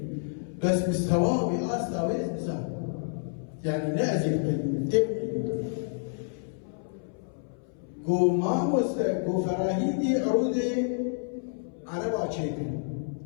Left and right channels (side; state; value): right; silent; 59 dB below the other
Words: بس مستواه بأستاويز نزال يعني نأزل بالتبعي قو ما قو فراهيدي عرودي على باشيكل